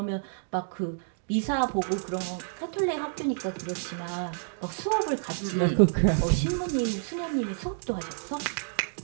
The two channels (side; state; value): left; silent; digital silence